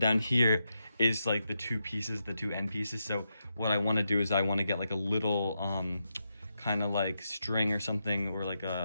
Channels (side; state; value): both; inverted; correlation -0.85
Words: here is like the 2 pieces, the 2 end pieces. So what I want to do is I want to get like a little kind of like string or something, or like